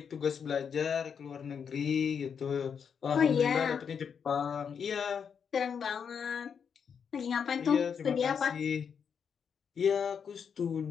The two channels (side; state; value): right; quieter; 6.9 dB